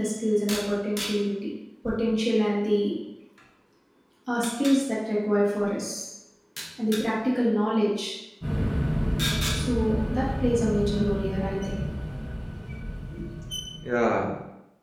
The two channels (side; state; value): both; identical; correlation 1.00